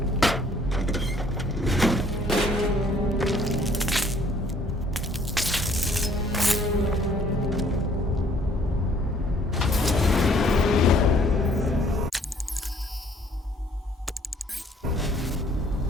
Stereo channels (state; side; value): normal; both; correlation 0.61